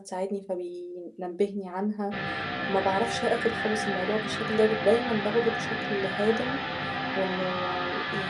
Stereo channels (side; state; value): both; identical; correlation 1.00